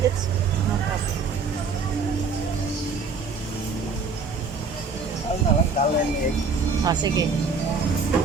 It's no problem. Ano na lang, dal and egg. Sige.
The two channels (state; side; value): quieter; left; 4.6 dB